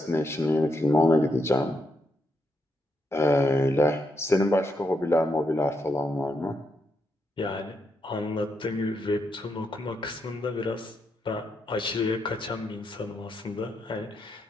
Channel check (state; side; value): normal; both; correlation 0.81